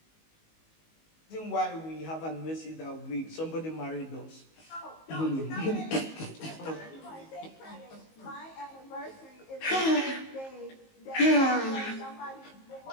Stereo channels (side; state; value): right; late; 19 ms